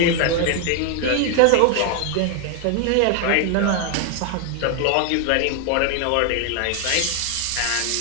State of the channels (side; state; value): both; different; correlation 0.00